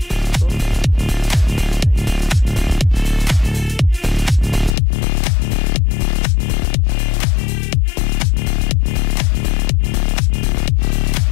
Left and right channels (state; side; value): drops out; right; at 4.8 s